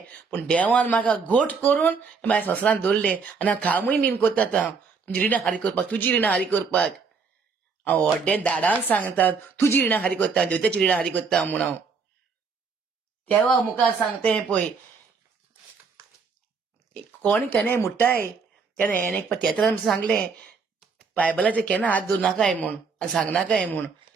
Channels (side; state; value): left; quieter; 5.1 dB